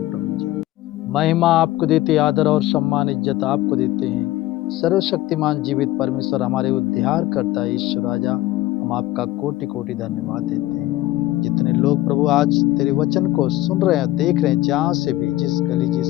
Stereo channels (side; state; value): right; quieter; 16.3 dB